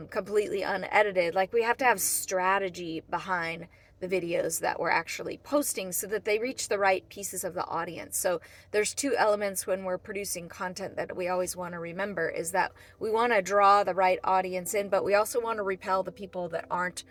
completely unedited. Like, we have to have strategy behind the videos that we're actually posting so that they reach the right pieces of the audience. So there's 2 elements when we're producing content that we always want to remember, is that we want to draw the right audience in, but we also want to repel the people that aren't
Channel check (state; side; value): identical; both; correlation 1.00